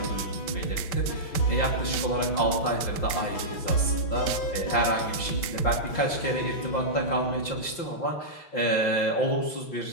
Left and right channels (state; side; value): late; right; 5.7 ms